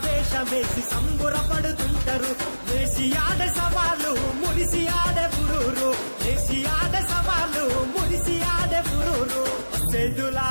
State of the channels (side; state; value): both; inverted; correlation -1.00